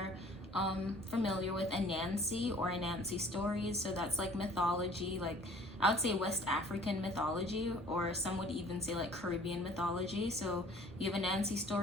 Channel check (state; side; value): normal; both; correlation 0.52